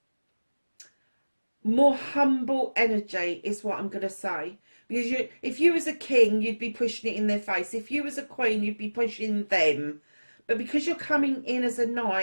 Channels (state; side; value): inverted; both; correlation -1.00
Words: more humble energy, is what I'm going to say. Because if you was a king, you'd be pushing it in their face. If you was a queen, you'd be pushing them. But because you're coming in as a